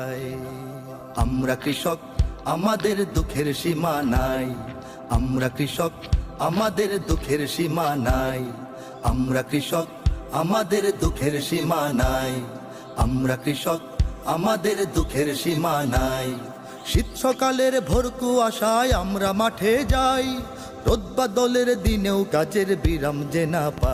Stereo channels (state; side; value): identical; both; correlation 1.00